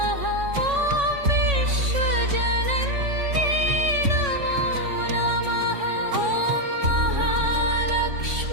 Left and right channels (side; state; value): left; late; 3.6 ms